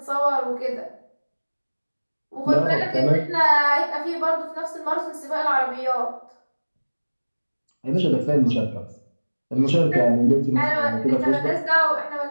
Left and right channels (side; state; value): both; inverted; correlation -1.00